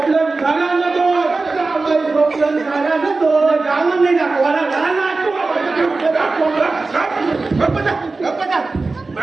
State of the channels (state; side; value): quieter; left; 3.7 dB